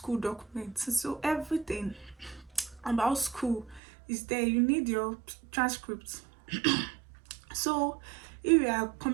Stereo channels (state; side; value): drops out; left; at 3.8 s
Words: documents. So everything about school is there. You need your transcripts. So if you are